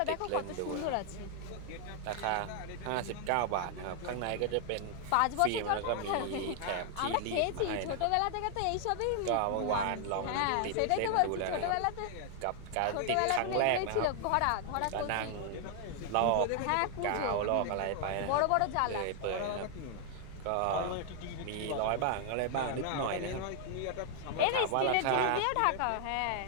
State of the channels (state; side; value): different; both; correlation 0.00